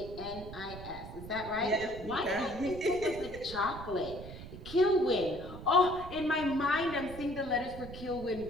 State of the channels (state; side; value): noise; right; rumble, 12 dB below the sound